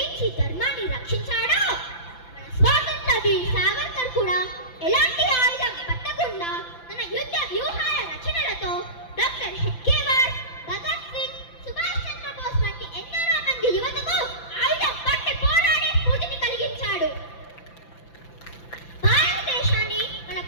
ధర్మాన్ని రక్షించాడో, మన స్వాతంత్ర వీర్ సావర్కర్ కూడా ఎలాంటి ఆయుధం పట్టకుండా తన యుద్ధ వ్యూహాల రచనలతో డాక్టర్ హెడ్గేవార్, భగత్ సింగ్, సుభాష్ చంద్రబోస్ వంటి ఎందరో మంది యువతకు ఆయుధం పట్టి పోరాడే స్ఫూర్తిని కలిగించాడు. భారతదేశాన్ని మన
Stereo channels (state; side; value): late; right; 5.9 ms